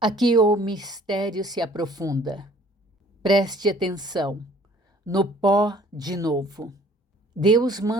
o mistério se aprofunda. Preste atenção. No pó de novo. Deus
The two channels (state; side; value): normal; both; correlation 0.55